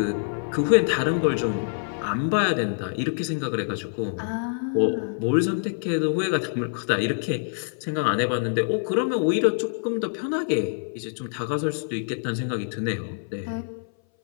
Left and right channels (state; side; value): silent; right; 59 dB below the other